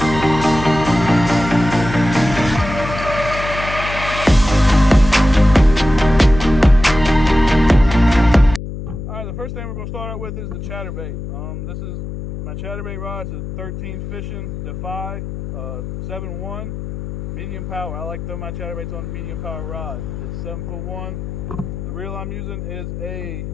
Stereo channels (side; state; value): left; noise; hum, 8 dB below the sound